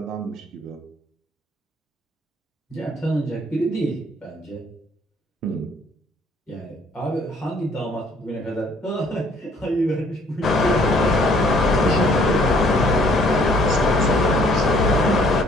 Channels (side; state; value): both; normal; correlation 0.61